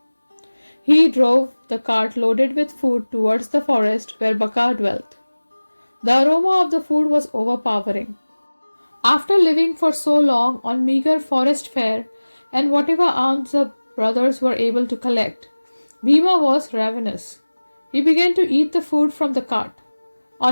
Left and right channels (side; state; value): both; inverted; correlation -1.00